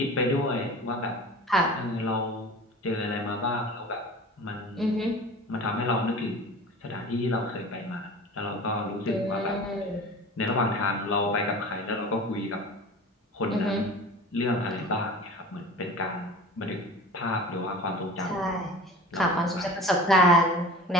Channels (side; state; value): both; normal; correlation 0.37